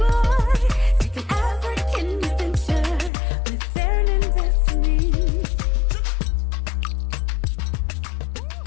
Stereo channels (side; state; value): right; drops out; at 3.1 s